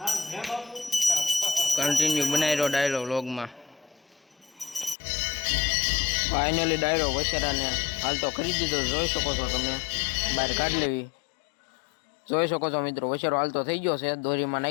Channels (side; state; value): right; drops out; at 5.0 s